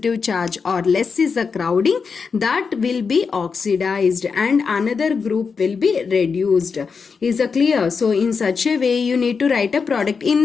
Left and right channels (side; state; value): right; quieter; 5.4 dB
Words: charge or less is a crowding, that will be oxidized and another group will be reduced. Is it clear? So in such a way you need to write a product.